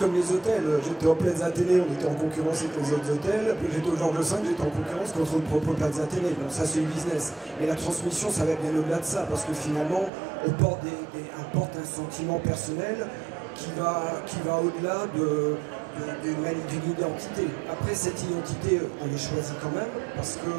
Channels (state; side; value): drops out; left; at 10.1 s